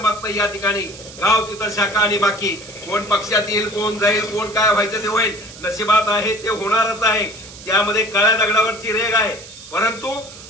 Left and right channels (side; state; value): right; noise; hiss, 17 dB below the sound